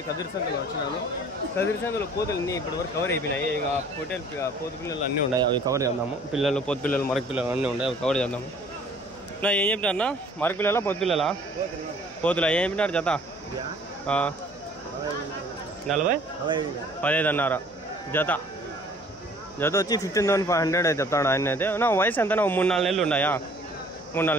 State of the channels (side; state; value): left; noise; hum, 26 dB below the sound